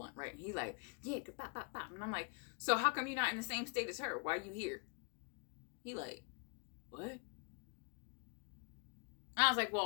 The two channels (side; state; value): right; quieter; 37.2 dB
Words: right? And he like, yeah, pop, pop, pop. And I'm like, so how come you're not in the same state as her? Why are you here? He like, what? And I was like,